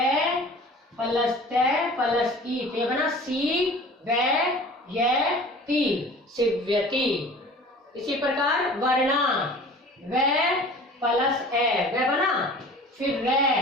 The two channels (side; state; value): both; normal; correlation 0.43